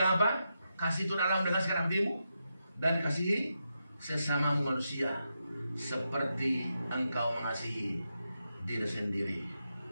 apa? Kasih itu dalam dengan sekarang hatimu, dan kasihi sesamamu manusia seperti engkau mengasihi diri sendiri.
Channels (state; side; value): inverted; both; correlation -0.86